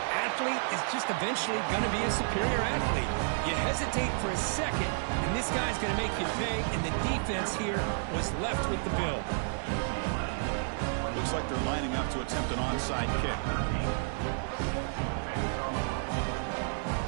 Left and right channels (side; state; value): left; silent; digital silence